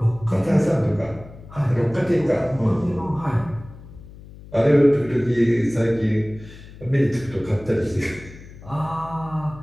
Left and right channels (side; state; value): left; noise; hum, 18 dB below the sound